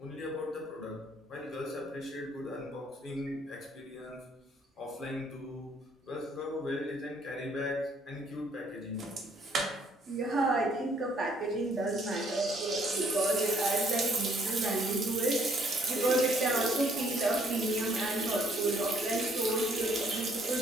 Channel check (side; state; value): both; normal; correlation 0.65